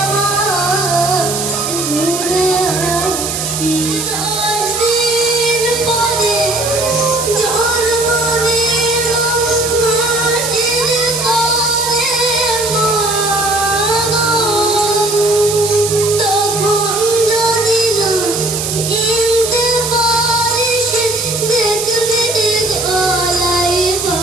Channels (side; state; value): right; noise; hiss, 3 dB below the sound